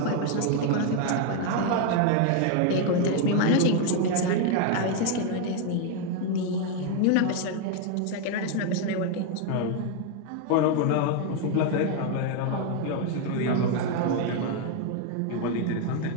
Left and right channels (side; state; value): both; different; correlation 0.01